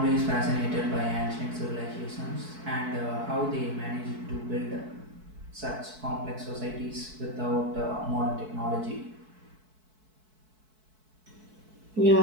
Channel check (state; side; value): late; left; 4.6 ms